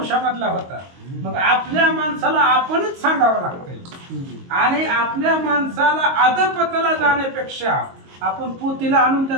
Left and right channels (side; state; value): left; late; 22 ms